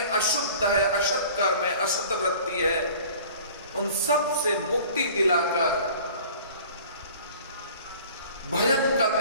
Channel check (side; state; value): both; inverted; correlation -0.46